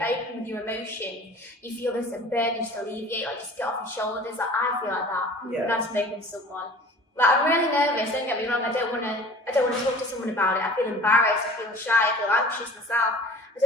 open with your emotion, you feel this burden just alleviate, like just get off your shoulders. Like I feel like that. Yeah. And I'm spoken to someone. Like I'm really nervous, don't get me wrong, I don't want to talk to someone about it. I feel embarrassed, I feel shy, I feel anxious myself. I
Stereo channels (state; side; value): normal; both; correlation 0.44